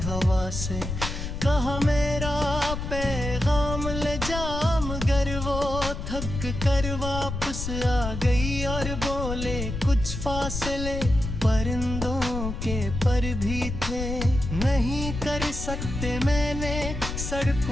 हवा से कहा मेरा पैगाम ले जा, मगर वो थक कर वापस आ गई और बोले कुछ फासले परिंदों के पर भी थे। नहीं कर सकते मैंने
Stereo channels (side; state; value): left; noise; rumble, 5 dB below the sound